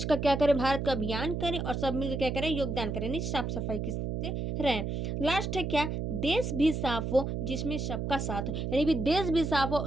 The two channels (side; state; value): right; noise; hum, 2 dB below the sound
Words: का क्या करें, भारत का अभियान करें और सब मिलकर क्या करें, योगदान करें, यानी साफ सफाई से रहें। लास्ट है क्या, देश भी साफ हो जिसमें सबका साथ हो, यानी भी देश भी साफ हो